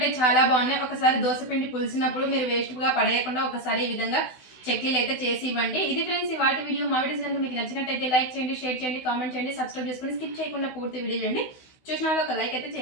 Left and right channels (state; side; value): late; right; 16 ms